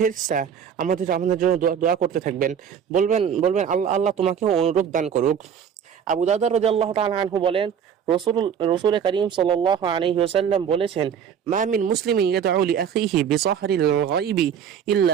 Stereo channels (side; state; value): left; quieter; 8.0 dB